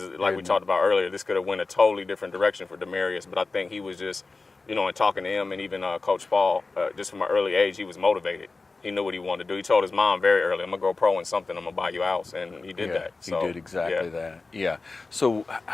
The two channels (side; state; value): right; quieter; 3.8 dB